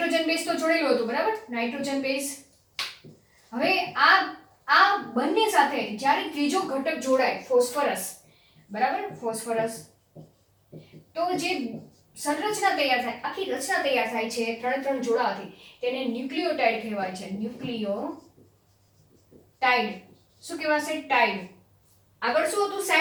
બેઝ તો જોડેલું હતું, બરાબર. Nitrogen base. હવે આ બંને સાથે જ્યારે ત્રીજો ઘટક જોડાય, ફોસ્ફરસ, બરાબર, ફોસ્ફરસ, તો જે સંરચના તૈયાર થાય, આખી રચના તૈયાર થાય છે ત્રણ જોડાવાથી, તેને ન્યુક્લિયોટાઇડ કહેવાય છે. ન્યુક્લિયોટાઇડ. શું કહેવાશે? ટાઇડ. આગળ શું હતું?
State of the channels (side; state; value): both; identical; correlation 1.00